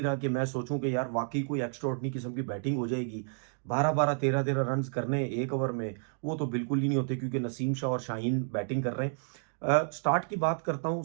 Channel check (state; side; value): silent; left; 57 dB below the other